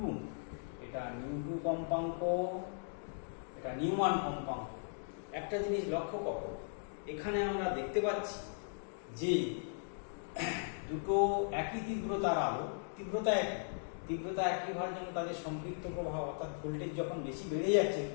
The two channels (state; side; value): silent; right; digital silence